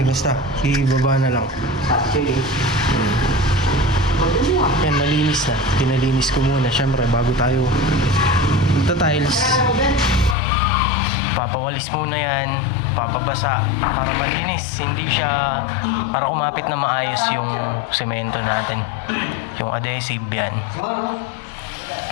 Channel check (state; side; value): drops out; right; at 10.4 s